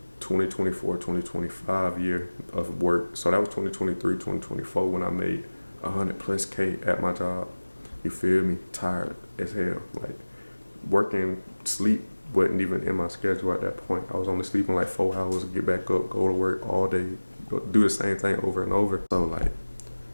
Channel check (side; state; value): both; inverted; correlation -1.00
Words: 2024-2025 year of work. So that was 2023-2024 when I made 100+K at my job. You feel me? Tired as hell. Like, working, sleep wasn't even in my schedule at that point. I was only sleeping like 4 hours, get back up, go to work all day, do the same thing over and over. So like,